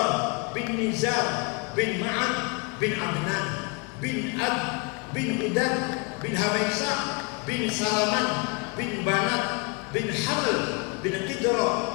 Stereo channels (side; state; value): right; quieter; 31.1 dB